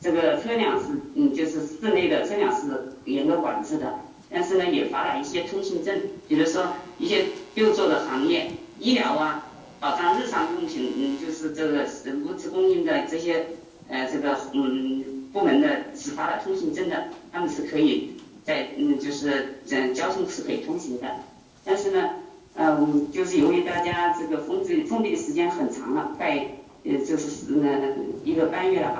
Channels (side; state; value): both; identical; correlation 1.00